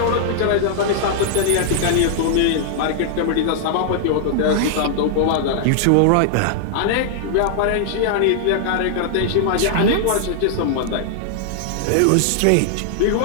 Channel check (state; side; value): different; both; correlation -0.01